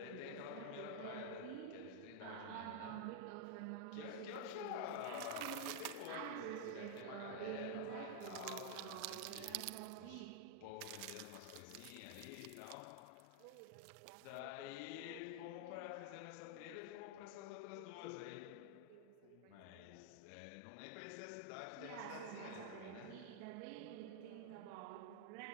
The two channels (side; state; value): both; different; correlation 0.00